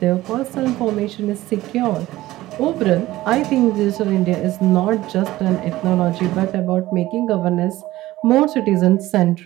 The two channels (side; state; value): left; quieter; 16.6 dB